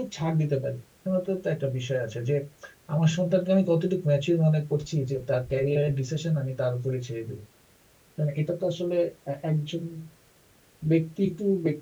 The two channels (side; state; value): both; identical; correlation 1.00